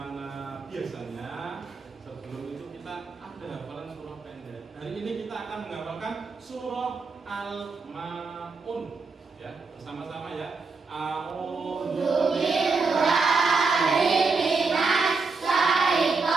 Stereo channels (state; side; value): quieter; left; 4.4 dB